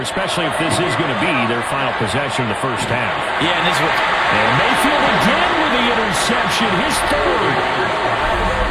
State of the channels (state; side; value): identical; both; correlation 1.00